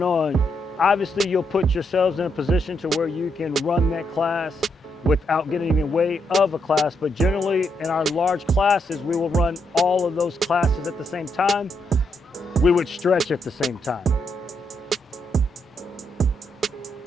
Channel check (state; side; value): normal; both; correlation 0.79